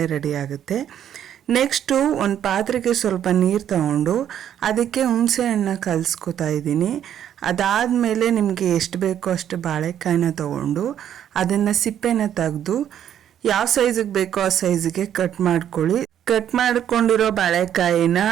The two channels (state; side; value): quieter; left; 10.0 dB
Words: ರೆಡಿ ಆಗುತ್ತೆ. ನೆಕ್ಸ್ಟು ಒಂದು ಪಾತ್ರೆಗೆ ಸ್ವಲ್ಪ ನೀರು ತಗೊಂಡು ಅದಕ್ಕೆ ಹುಣಸೆ ಹಣ್ಣನ್ನ ಕಲಿಸ್ಕೊತಾ ಇದ್ದೀನಿ. ಅದಾದಮೇಲೆ ನಿಮಗೆ ಎಷ್ಟು ಬೇಕೋ ಅಷ್ಟು ಬಾಳೆಕಾಯಿನ ತೊಗೊಂಡು ಅದನ್ನು ಸಿಪ್ಪೆನ ತೆಗೆದು ಯಾವ ಸೈಜಿಗೆ ಬೇಕೋ ಆ ಸೈಜಿಗೆ ಕಟ್ ಮಾಡ್ಕೊಳ್ಳಿ. ಕಟ್ ಮಾಡ್ಕೊಂಡಿರೋ ಬಾಳೆಕಾಯಿನ